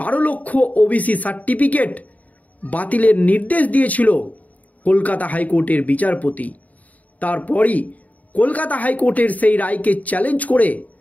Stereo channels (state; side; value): late; right; 0.073 ms